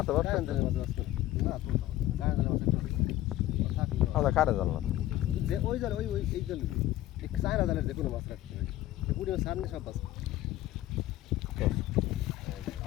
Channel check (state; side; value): quieter; right; 14.9 dB